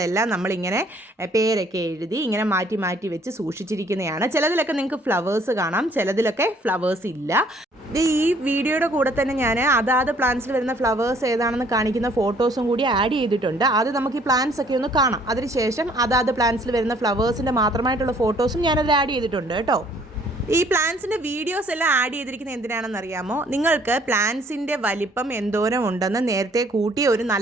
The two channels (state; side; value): normal; both; correlation 0.60